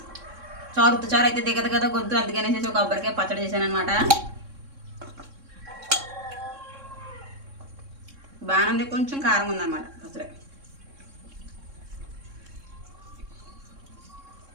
చారు అయితే దిగదు కదా గొంతు, అందుకనేసి ఒక కొబ్బరికాయ పచ్చడి చేశాను అనమాట. బాగానే కొంచెం కారం ఉందన్నమాట పచ్చడి.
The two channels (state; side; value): late; left; 3.6 ms